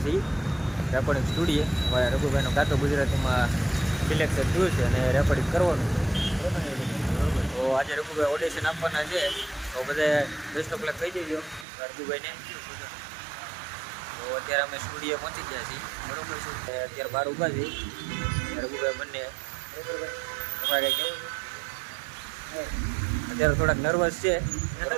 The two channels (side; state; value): left; drops out; at 11.7 s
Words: છીએ રેકોર્ડિંગ સ્ટુડિયો. હવે રઘુભાઈનું કાં તો ગુજરાતીમાં સિલેક્શન થયું છે અને રેકોર્ડિંગ કરવાનું છે. બરોબર. તો આજે રઘુભાઈ ઓડિશન આપવાના છે, તો બધા બેસ્ટ ઓફ લક કહી દેજો રઘુભાઈને. તો અત્યારે અમે સ્ટુડિયો પહોંચી ગયા છીએ. બરોબર છે. અત્યારે બહાર ઊભા છીએ રઘુભાઈ બંને. તમારે કેવું છે? અત્યારે થોડાક નર્વસ છે,